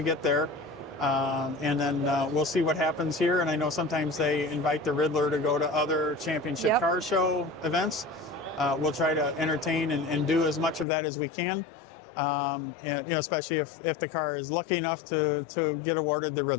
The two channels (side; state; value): right; drops out; at 10.9 s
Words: get there. And then we'll see what happens here. And I know sometimes they invite the Ridler to go to other championship Yep. car show events. We'll try to entertain and do as much of that as we can. And, especially if the car is lucky enough to get awarded the